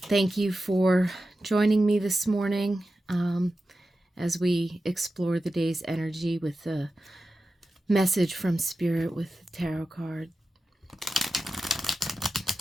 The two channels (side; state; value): both; normal; correlation 0.92